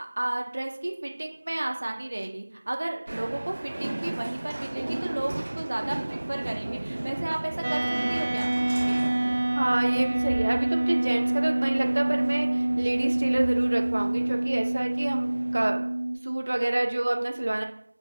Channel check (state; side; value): inverted; both; correlation -1.00